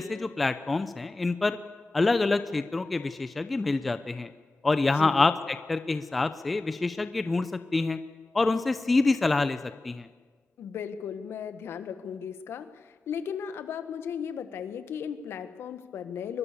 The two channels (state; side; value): quieter; right; 3.2 dB